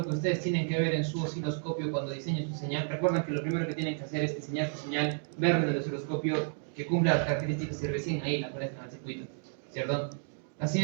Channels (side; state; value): left; silent; digital silence